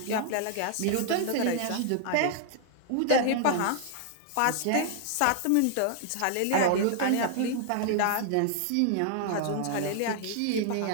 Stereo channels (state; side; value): different; both; correlation -0.01